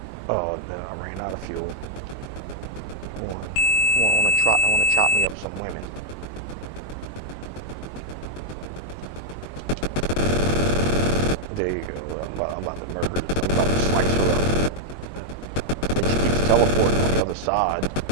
Oh, no, I ran out of fuel. I want to chop me up some women. There you go. I'm about to murder. I'm about to slice her up. And she keeps teleporting on the other side.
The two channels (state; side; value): late; right; 22 ms